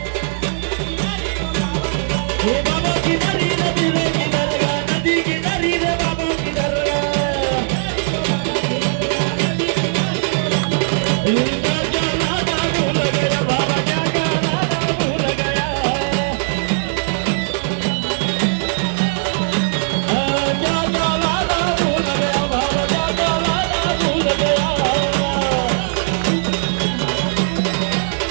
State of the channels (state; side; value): silent; left; digital silence